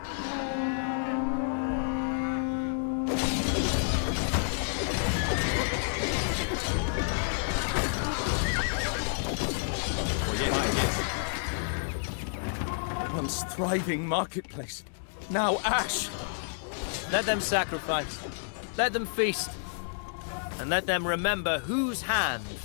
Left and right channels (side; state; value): right; silent; digital silence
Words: Once thriving marketplace, now ash. Let them sacrifice, let them feast, and let them remember whose hand